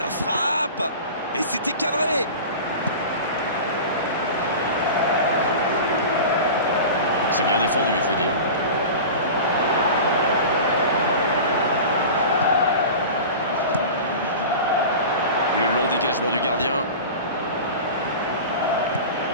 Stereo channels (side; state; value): both; inverted; correlation -0.33